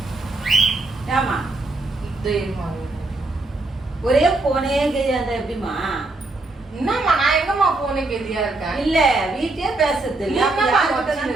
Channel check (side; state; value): left; quieter; 3.1 dB